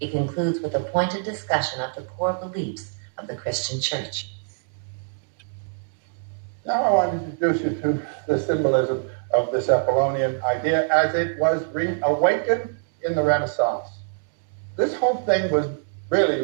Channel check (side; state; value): left; silent; digital silence